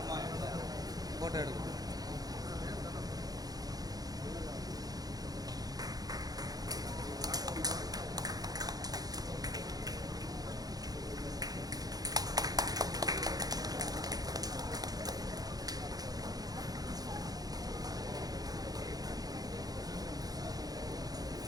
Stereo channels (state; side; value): late; left; 0.18 ms